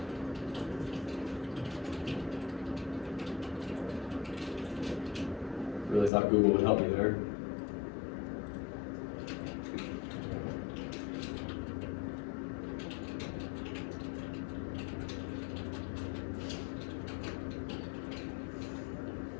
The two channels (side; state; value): right; drops out; at 6.1 s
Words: really thought Google would help me there.